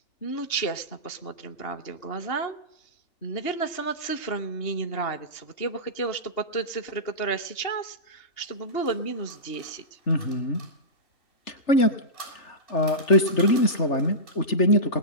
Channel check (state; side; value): late; right; 3.4 ms